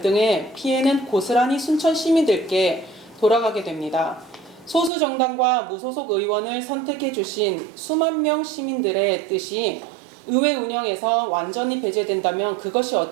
피해는 고스란히 순천 시민들께 돌아가게 됩니다. 소수 정당과 무소속 의원을 선택해 주신 수만 명 시민들의 뜻이 의회 운영에서 완전히 배제된다면 그것이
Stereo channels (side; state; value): left; drops out; at 4.9 s